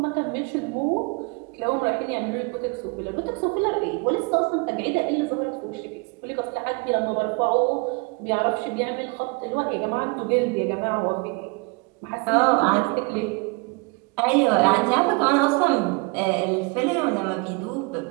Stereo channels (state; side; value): quieter; left; 29.4 dB